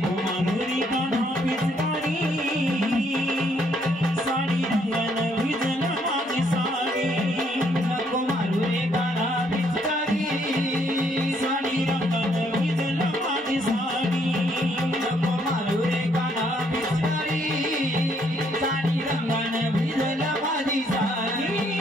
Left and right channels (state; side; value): normal; both; correlation 0.70